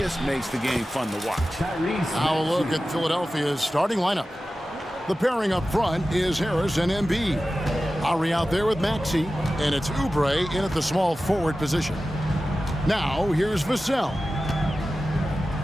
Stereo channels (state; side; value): normal; both; correlation 0.94